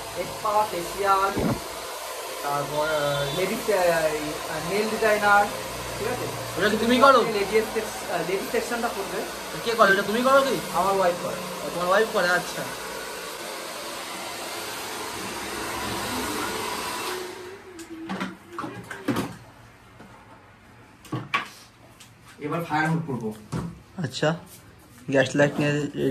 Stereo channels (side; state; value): both; identical; correlation 1.00